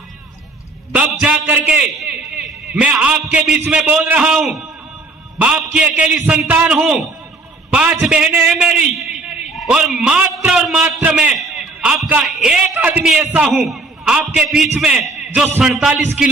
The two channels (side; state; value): left; quieter; 3.3 dB